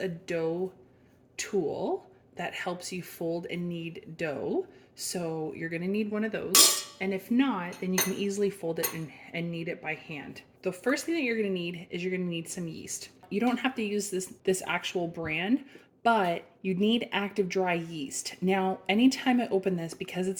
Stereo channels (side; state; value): both; identical; correlation 1.00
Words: dough tool that helps you fold and knead dough. So you're gonna need one of those. And if not, then you can easily fold it and knead it by hand. The first thing that you're gonna need is you're gonna need some yeast. You don't have to use this actual brand, but you need active dry yeast. Now, anytime I open this, because